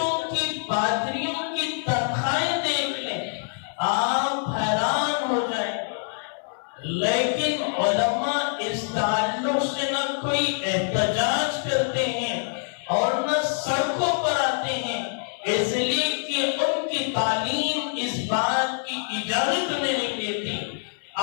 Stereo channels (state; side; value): silent; right; digital silence